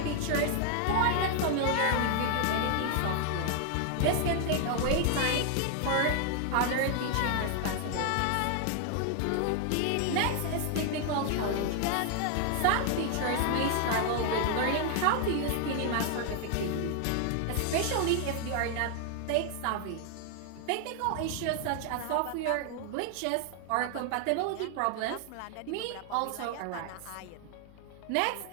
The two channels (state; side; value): different; both; correlation 0.00